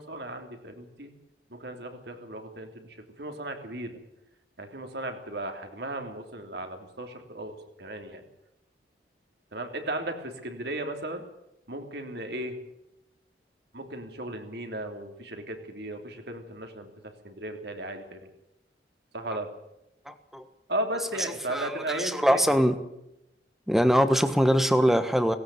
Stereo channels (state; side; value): normal; both; correlation 0.74